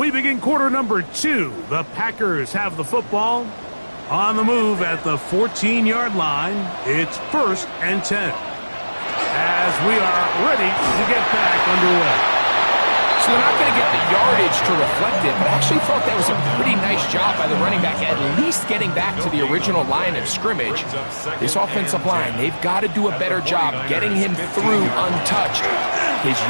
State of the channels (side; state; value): both; inverted; correlation -1.00